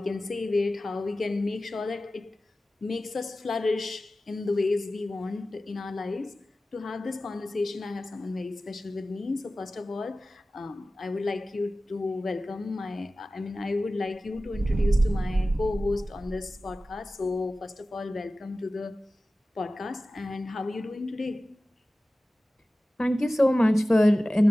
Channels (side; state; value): both; normal; correlation 0.96